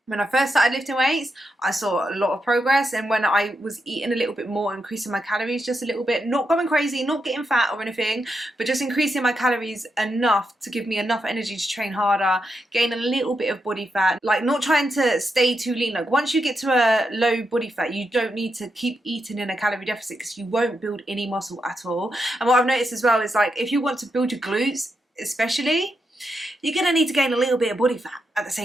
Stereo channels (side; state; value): both; normal; correlation 0.84